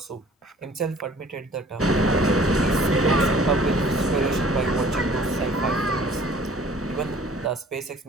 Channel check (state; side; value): normal; both; correlation 0.52